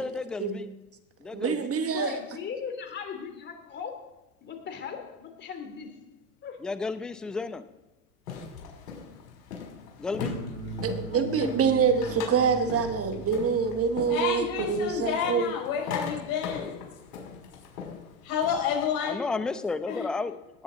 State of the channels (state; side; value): normal; both; correlation 0.13